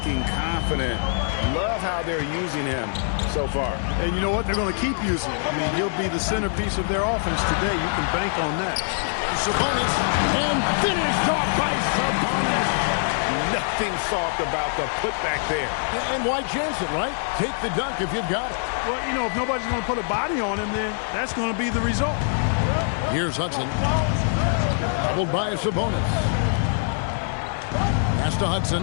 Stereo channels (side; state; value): right; silent; 63 dB below the other